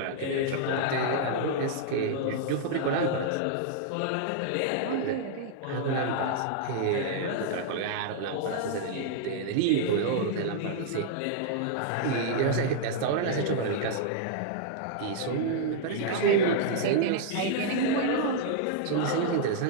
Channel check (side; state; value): both; different; correlation -0.01